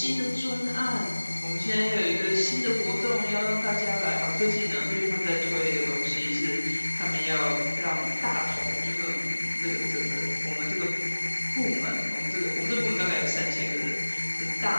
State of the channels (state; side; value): inverted; both; correlation -1.00